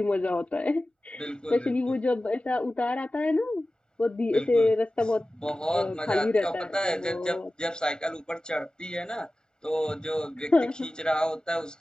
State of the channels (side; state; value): both; normal; correlation 0.96